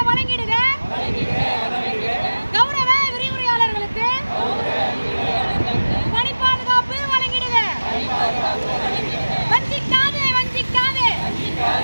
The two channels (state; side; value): inverted; both; correlation -1.00